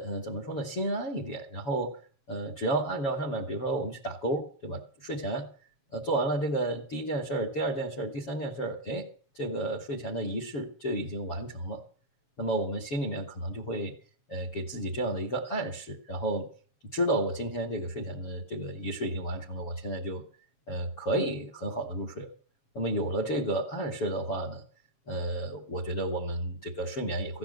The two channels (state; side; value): late; right; 7.3 ms